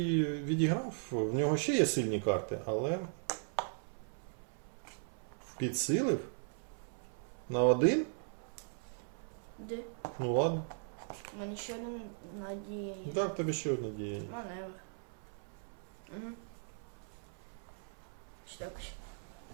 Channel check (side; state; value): left; silent; 52 dB below the other